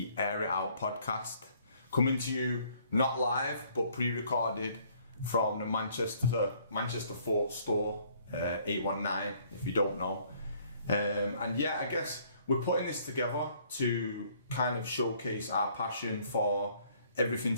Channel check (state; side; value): inverted; both; correlation -0.62